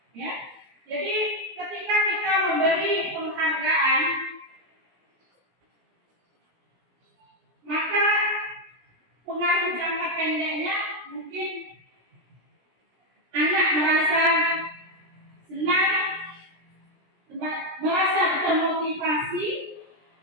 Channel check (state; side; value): late; left; 17 ms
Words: ya. Jadi ketika kita memberi penghargaan, maka pengaruh jangka pendeknya mungkin anak merasa senang, merasa termotivasi,